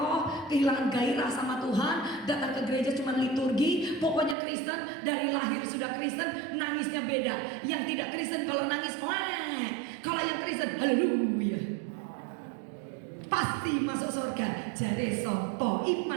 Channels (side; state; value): left; drops out; at 4.4 s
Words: kehilangan gairah sama Tuhan. Datang ke gereja cuma liturgi. Pokoknya Kristen dari lahir sudah Kristen, nangisnya beda. Yang tidak Kristen kalau nangis, wah. Kalau yang Kristen, haleluya. pasti masuk surga. Jare sopo,